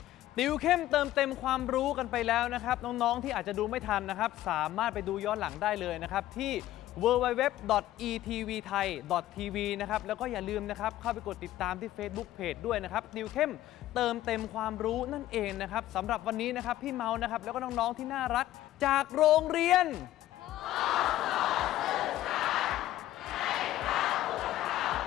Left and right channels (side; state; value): right; quieter; 14.3 dB